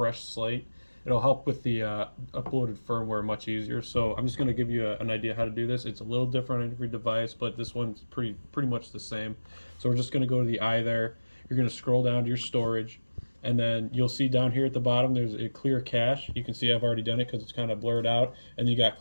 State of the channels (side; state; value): both; inverted; correlation -1.00